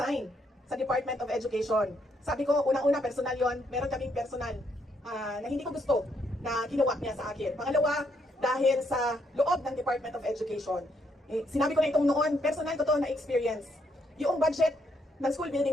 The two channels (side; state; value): both; normal; correlation 0.74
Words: sa Department of Education. Sabi ko, unang-una personal yon, meron kaming personal na hindi ko gusto na ginawa niya sa akin. Pangalawa, dahil sa loob ng Department of Education. Sinabi ko na itong noon, personal ko to na experience. Yung budget ng school